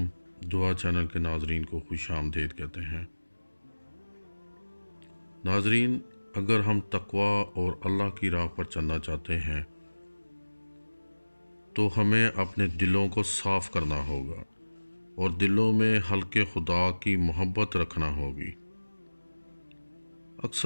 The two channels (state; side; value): inverted; both; correlation -1.00